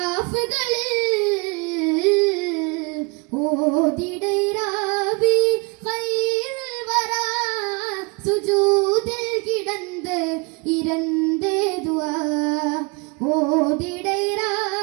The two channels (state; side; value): quieter; left; 31.0 dB